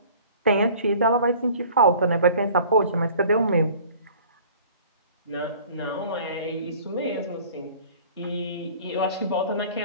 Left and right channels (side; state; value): both; inverted; correlation -0.48